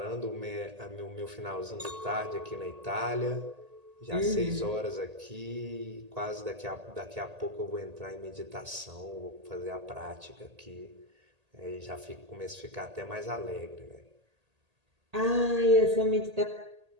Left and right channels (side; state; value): left; late; 1.8 ms